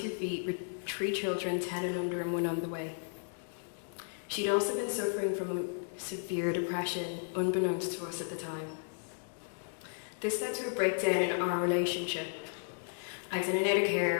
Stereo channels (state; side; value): silent; right; digital silence